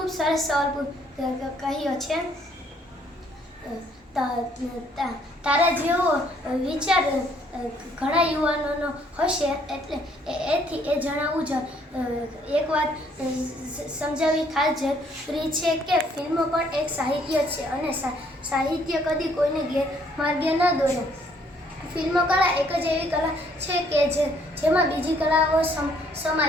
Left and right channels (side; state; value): both; normal; correlation 0.65